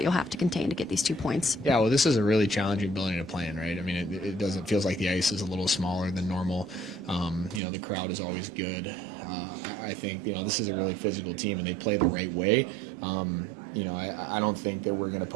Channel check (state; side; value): drops out; left; at 7.6 s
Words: you'll have to contain to get these 2 points? Yeah, well, this is a really challenging building to play in, right? I mean, it feels like the ice is a little smaller than normal. The crowd is always good. I think, this is a really physical team, and they play the right way. I don't think that we're going to